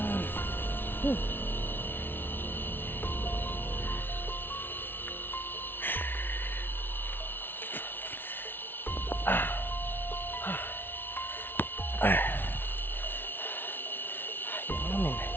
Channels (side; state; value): right; late; 0.10 ms